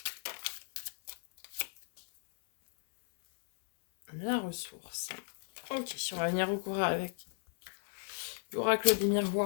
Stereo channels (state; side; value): silent; right; 55 dB below the other